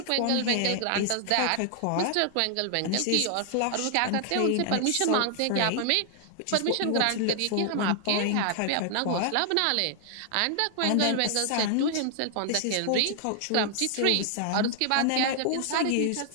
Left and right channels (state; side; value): different; both; correlation 0.00